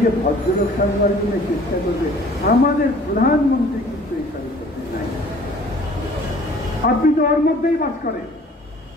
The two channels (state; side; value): normal; both; correlation 0.52